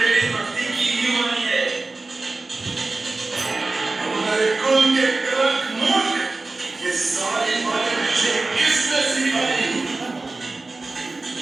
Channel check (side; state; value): left; quieter; 3.4 dB